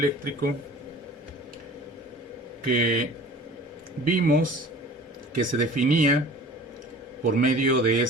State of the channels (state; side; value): normal; both; correlation 0.44